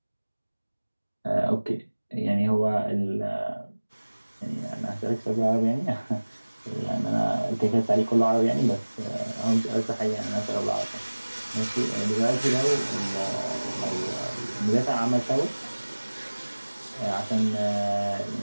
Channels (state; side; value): inverted; both; correlation -1.00